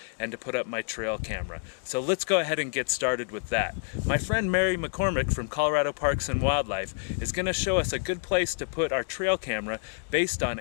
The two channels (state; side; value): silent; right; digital silence